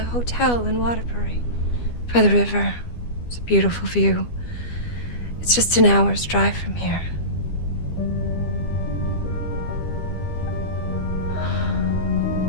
hotel in Waterbury, by the river. It's a beautiful view. It's just an hour's drive from here.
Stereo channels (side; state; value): right; late; 12 ms